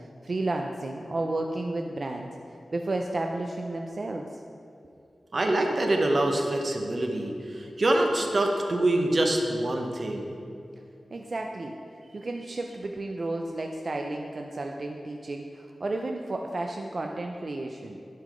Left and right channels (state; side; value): normal; both; correlation 0.95